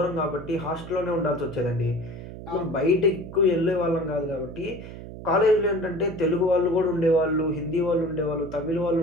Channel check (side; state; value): right; noise; hum, 12 dB below the sound